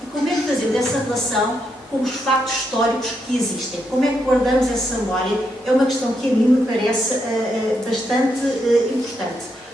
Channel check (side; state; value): both; normal; correlation 0.80